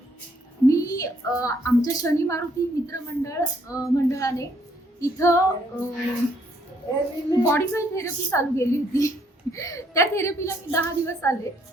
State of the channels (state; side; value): normal; both; correlation 0.68